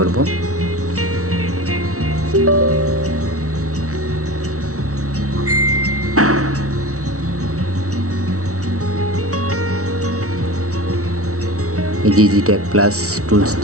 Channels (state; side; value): late; left; 0.65 ms